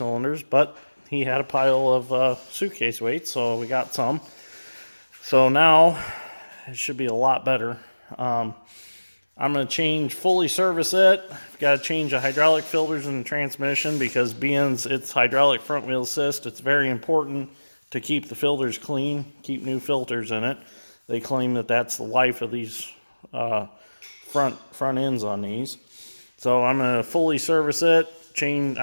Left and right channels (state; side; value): inverted; both; correlation -1.00